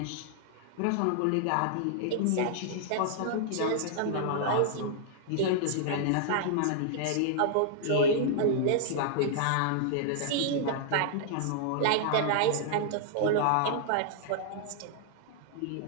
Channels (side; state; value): both; different; correlation -0.01